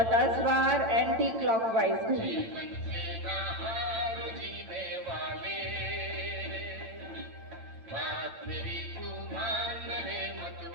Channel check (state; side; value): late; left; 8.9 ms